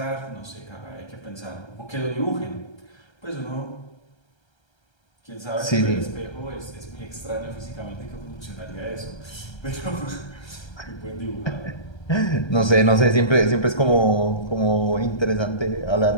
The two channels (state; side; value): late; right; 1.3 ms